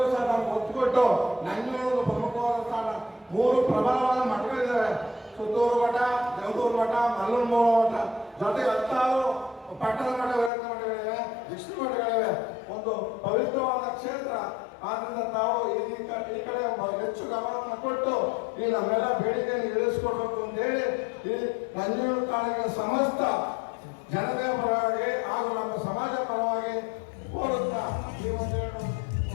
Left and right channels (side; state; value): right; drops out; at 10.5 s